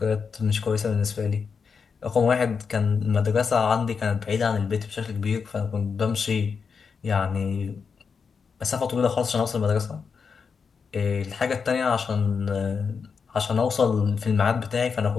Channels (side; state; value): right; quieter; 5.8 dB